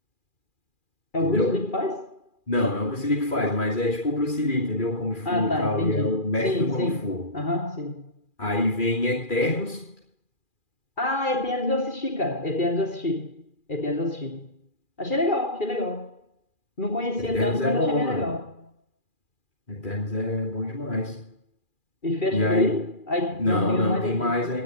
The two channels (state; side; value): late; right; 2.4 ms